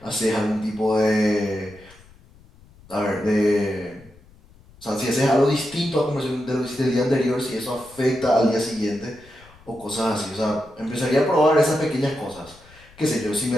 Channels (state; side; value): noise; left; rumble, 26 dB below the sound